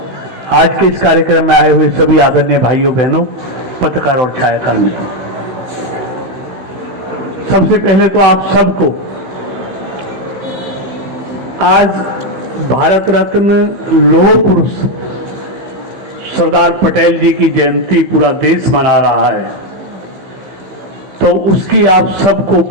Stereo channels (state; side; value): late; left; 15 ms